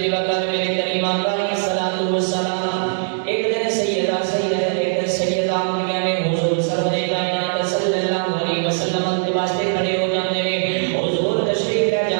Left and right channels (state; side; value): silent; left; digital silence